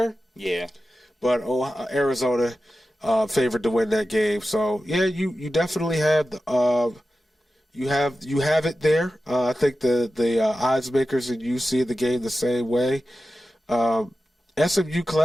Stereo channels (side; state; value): both; normal; correlation 0.93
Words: Yeah. But Arizona favored to win that game. So yeah, you definitely have you have it there. I think the odds makers and you see the game the same way. SMU